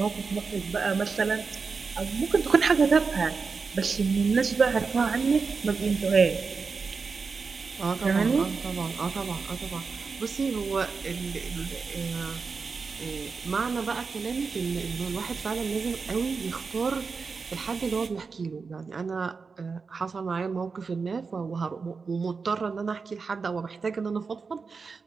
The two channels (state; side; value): quieter; left; 4.9 dB